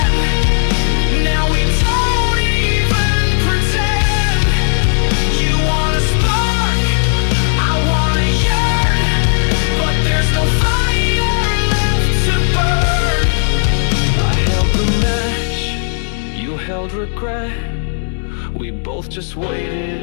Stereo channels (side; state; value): right; silent; digital silence